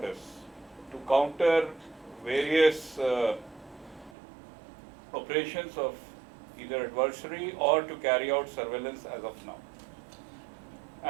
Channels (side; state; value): left; drops out; at 4.2 s